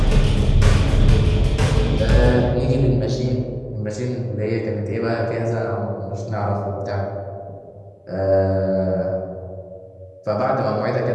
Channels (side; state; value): both; identical; correlation 1.00